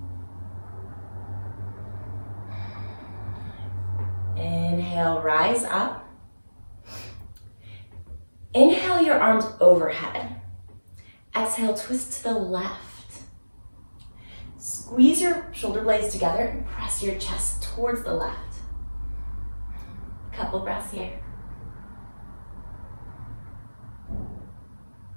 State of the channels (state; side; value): inverted; both; correlation -1.00